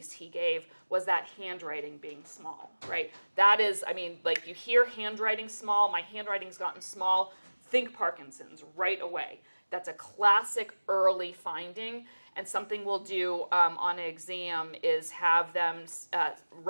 he gave was that handwriting being small, right? That is, I mean, like you hear handwriting small, my handwriting's gotten small, think Parkinson's right away. That's a classic early finding, and something we'll do on an exam is have them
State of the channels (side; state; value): both; inverted; correlation -1.00